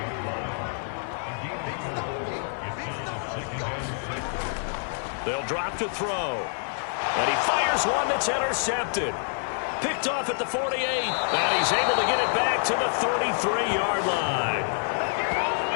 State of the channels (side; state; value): right; silent; 55 dB below the other